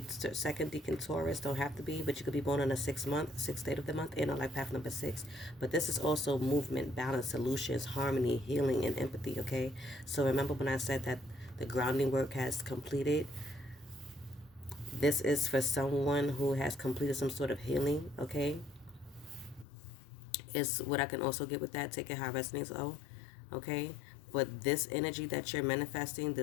second decan Taurus, don't have to be, but you could be born on a 6th date of the month, and on life path number 6. But this is also movement, balance, solutions, harmony, healing, and empathy, okay. So remember when I said that the grounding work has completed, this is for someone who has completed some sort of healing, okay. Is what I can also get with that. Take it how it resonates, okay. But this energy that you're manifesting,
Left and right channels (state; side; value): drops out; right; at 19.7 s